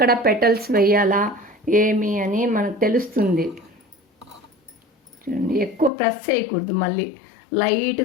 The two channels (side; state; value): right; drops out; at 5.9 s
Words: పెటల్స్ వేయాలా ఏమి అని మనకు తెలుస్తుంది. చూడండి, ఎక్కువ ప్రెస్ చేయకూడదు, మళ్ళీ